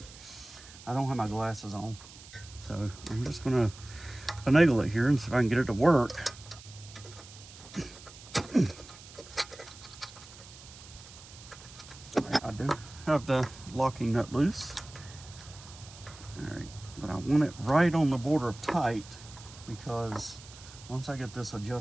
I don't have my glasses on, so I'm just gonna finagle it here and see if I can get it to work. I do have the locking nut loose. All right, but I want it right on the border of tight, because once I get this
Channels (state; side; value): noise; right; hiss, 18 dB below the sound